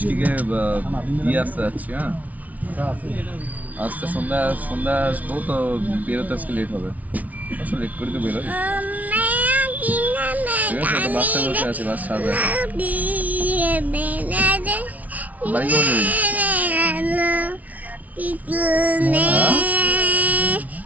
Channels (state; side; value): late; left; 0.072 ms